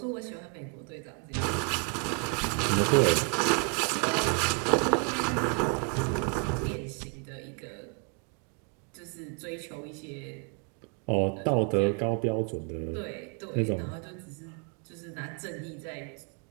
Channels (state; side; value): quieter; left; 35.9 dB